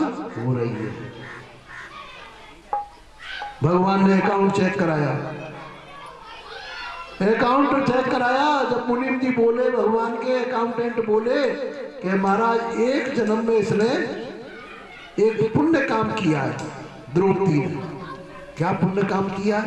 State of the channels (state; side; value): identical; both; correlation 1.00